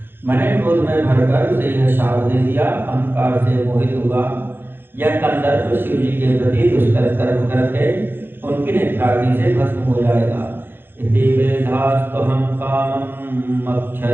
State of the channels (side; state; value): left; late; 0.10 ms